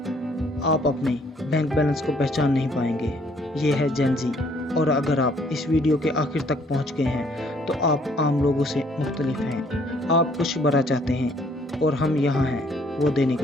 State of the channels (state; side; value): normal; both; correlation 0.63